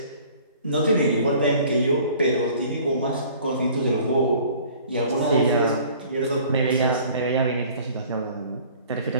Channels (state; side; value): inverted; both; correlation -0.51